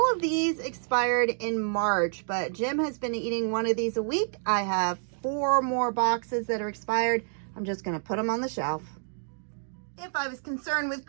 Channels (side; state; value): left; silent; digital silence